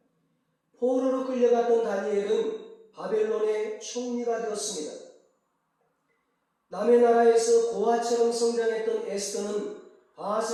포로로 끌려갔던 다니엘은 바벨론의 총리가 되었습니다. 남의 나라에서 고아처럼 성장했던 에스더는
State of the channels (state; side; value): identical; both; correlation 1.00